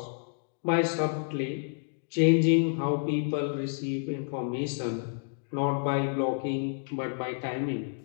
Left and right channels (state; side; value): silent; right; 58 dB below the other